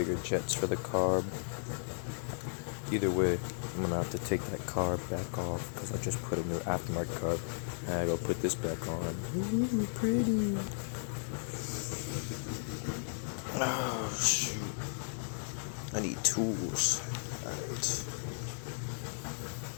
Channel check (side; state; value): right; silent; 54 dB below the other